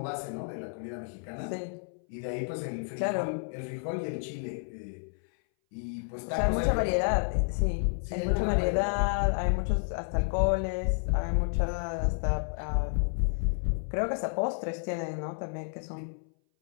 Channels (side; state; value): right; silent; 57 dB below the other